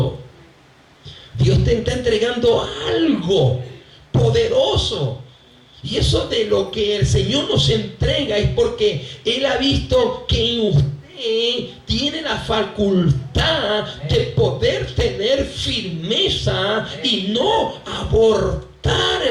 Dios te está entregando algo poderoso. Y eso de lo que el Señor nos entrega es porque Él ha visto que en usted tiene la facultad de poder tener firmeza y no abortar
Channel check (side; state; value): both; identical; correlation 1.00